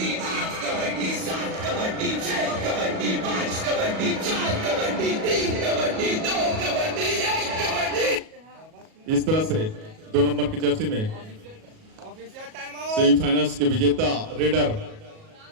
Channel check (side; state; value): left; late; 37 ms